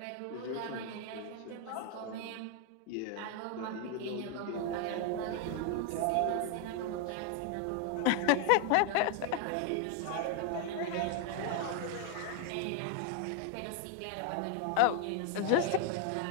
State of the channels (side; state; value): both; different; correlation 0.00